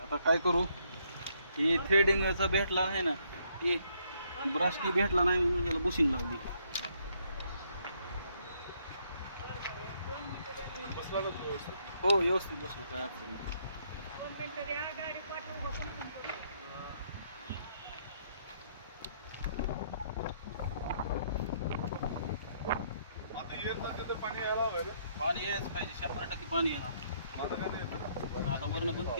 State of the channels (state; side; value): inverted; both; correlation -0.70